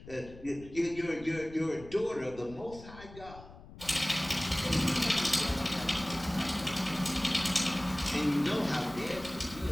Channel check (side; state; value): left; noise; rumble, 17 dB below the sound